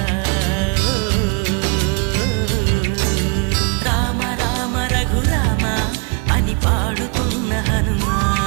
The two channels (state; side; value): quieter; left; 32.6 dB